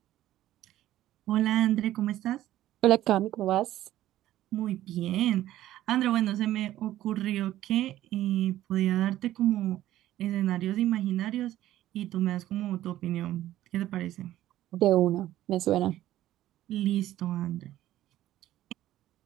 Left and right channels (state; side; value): quieter; left; 13.9 dB